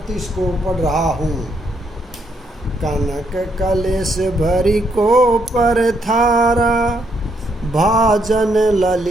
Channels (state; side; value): normal; both; correlation 0.75